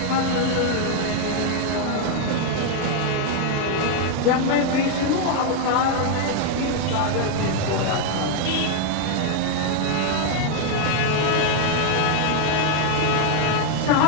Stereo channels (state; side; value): different; both; correlation 0.01